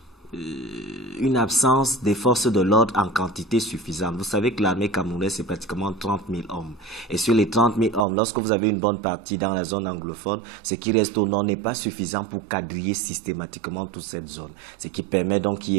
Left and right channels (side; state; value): left; drops out; at 8.1 s